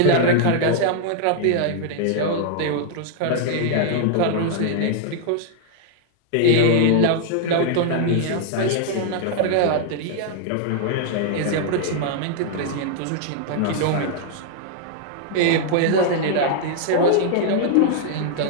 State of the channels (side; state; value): both; different; correlation -0.01